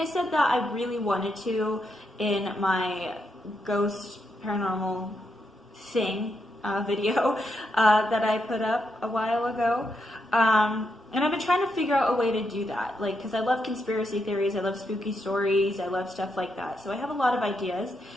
said that I really wanted to in my ghost paranormal thing video that I put up a while ago. And I've been trying to figure out a way to do that, like, because I love conspiracy theories, I love spooky stories, I love stuff like that. So I have a lot of ideas.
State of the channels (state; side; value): normal; both; correlation 0.82